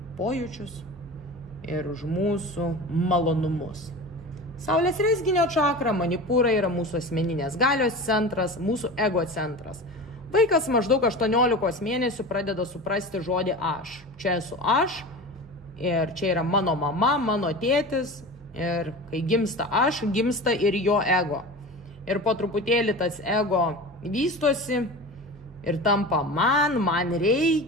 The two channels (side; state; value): both; normal; correlation 0.31